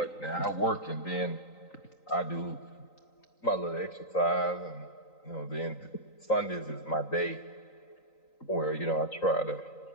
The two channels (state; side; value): late; right; 3.9 ms